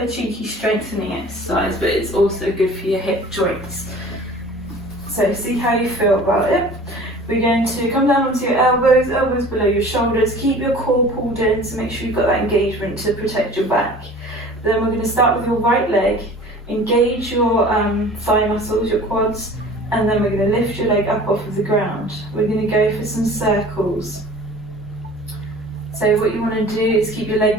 a cheeky strengthening exercise, but it's also good for your hip joints. So see how you feel about it. We're going to come down onto your elbows below your shoulders. Keep your core pulled in to make sure you've got that engagement to protect your back. Then we're going to start with your right leg. Engage your thigh muscles, your quads, and then we're going to lift your leg up off of the ground. We're going to go for some circles. So what you want to do is keep your leg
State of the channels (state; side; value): normal; both; correlation 0.44